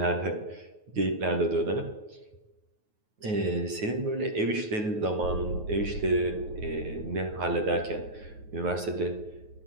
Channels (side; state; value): left; late; 9.3 ms